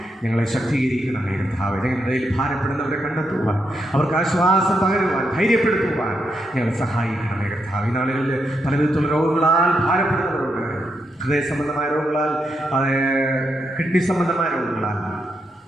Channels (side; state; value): both; normal; correlation 0.81